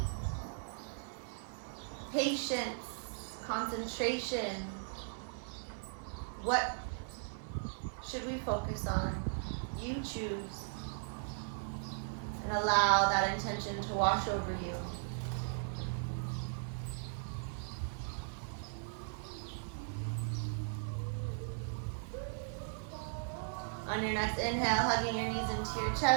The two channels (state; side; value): silent; left; 53 dB below the other